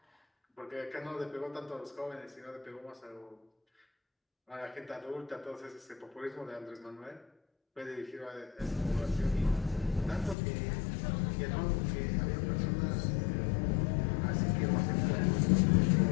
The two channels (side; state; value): right; drops out; at 10.4 s